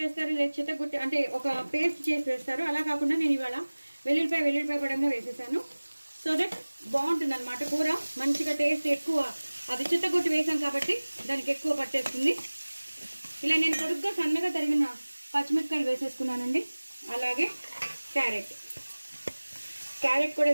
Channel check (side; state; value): both; inverted; correlation -1.00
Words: వేస్తారు, లేదా చిత్తగుట్టి అంటే ఒక పేస్ట్ చేసి వేస్తారు. అలా కాకుండా నేను ఇవాళ వెల్లుల్లిపాయ పడంగా వేసేసాను. సో దట్ బాగుంటుంది అనమాట కూర. మంచిగా టేస్ట్ ఎక్కువ, అది చిత్తగుట్టి వేసాం కాబట్టి దానికి ఎక్కువ పట్టేస్తుంది. ఇలా నేను పొడుగ్గా సన్నగా తరిగిన పచ్చిమిరపకాయలు వేసేసుకున్నానండి. అలాగే క్యారెట్ కూడా